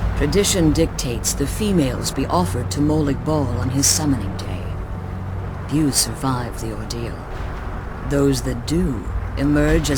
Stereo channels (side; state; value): both; identical; correlation 1.00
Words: Tradition dictates the females be offered to Molig Bal on his summoning day. Few survive the ordeal. Those that do emerge